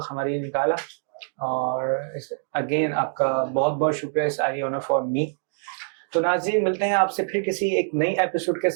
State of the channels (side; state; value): left; silent; digital silence